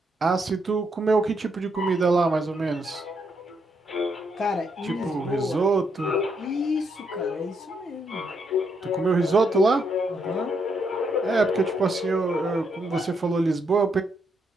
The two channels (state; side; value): normal; both; correlation 0.77